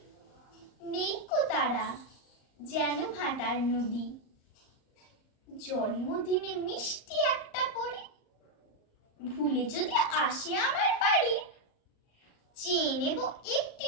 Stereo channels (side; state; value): right; late; 38 ms